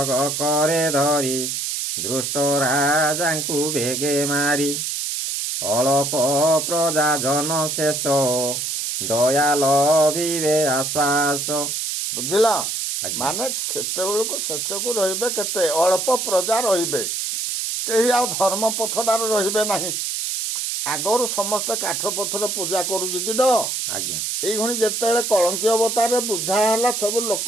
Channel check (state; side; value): noise; right; hiss, 2 dB below the sound